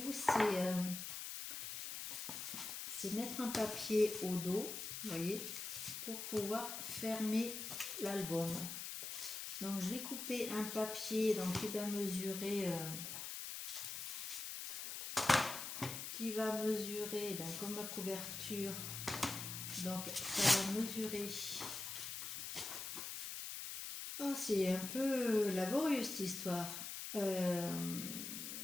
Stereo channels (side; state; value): left; noise; hiss, 5 dB below the sound